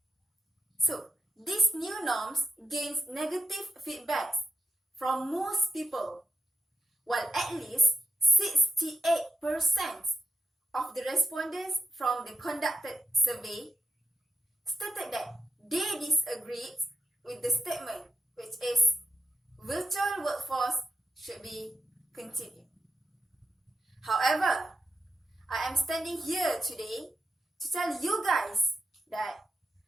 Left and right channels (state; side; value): normal; both; correlation 0.83